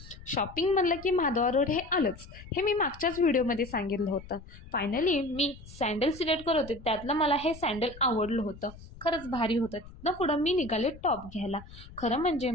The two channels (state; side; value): noise; left; rumble, 17 dB below the sound